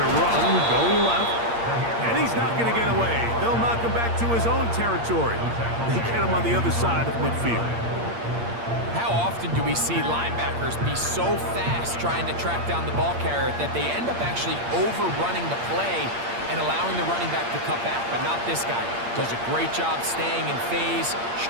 a run going left. And he's not going to get away. They'll knock him back to his own territory. They get him on the other side of midfield. How often do we see linebackers be so fast trying to track down the ball carrier that they end up actually overrunning the play and allowing the running back to cut back? But not this guy. Does a great job staying in phase,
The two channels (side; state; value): left; late; 8.6 ms